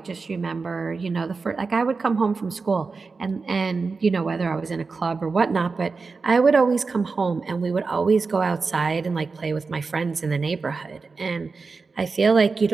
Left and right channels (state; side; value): quieter; left; 4.4 dB